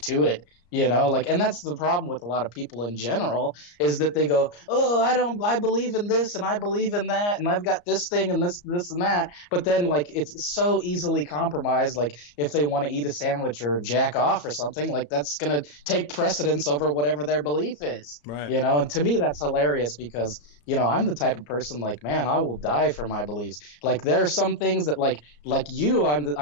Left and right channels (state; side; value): late; right; 34 ms